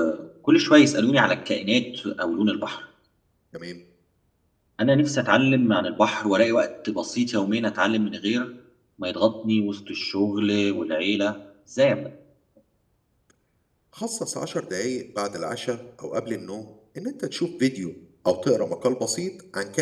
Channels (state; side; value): identical; both; correlation 1.00